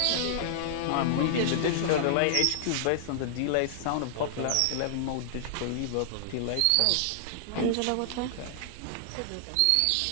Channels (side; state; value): both; different; correlation -0.01